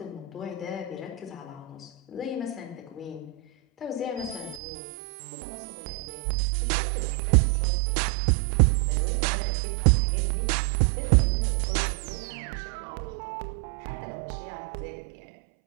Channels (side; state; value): left; drops out; at 4.6 s